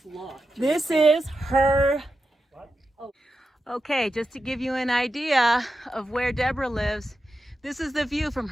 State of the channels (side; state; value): both; normal; correlation 0.90